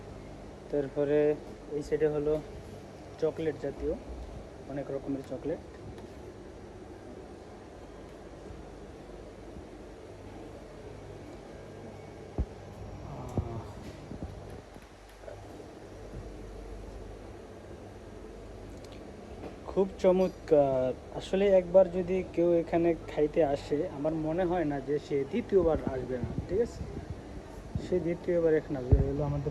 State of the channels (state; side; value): identical; both; correlation 1.00